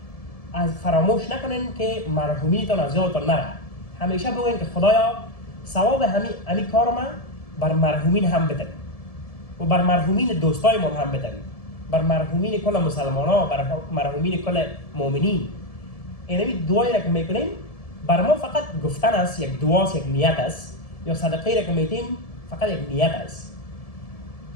از فراموش نکنین که مرحومینتان از یادتان نره. همیشه بگوین که خدایا ثواب همین کار ما بر مرحومین هم بدن و بر مرحومین دوستای ما هم بدن، بر مرحومین کل مسلمان ها، بر مرحومین کل مؤمنین. اینمی دعایی را که میکنیم بر ما فقط گفتن است، یک دعاست، یک نیت است، یا صدقه را که میدیم فقط یک نیت است.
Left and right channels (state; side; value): late; right; 1.7 ms